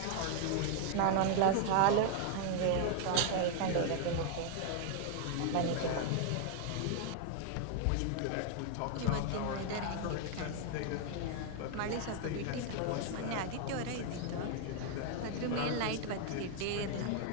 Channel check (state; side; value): different; both; correlation 0.00